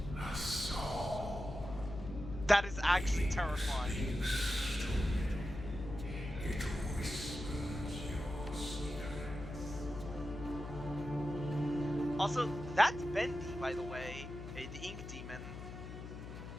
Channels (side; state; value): left; noise; hum, 10 dB below the sound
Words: A soul. That is actually terrifying. It whispers your secrets. Also, that's Bendy, by the way, the ink demon.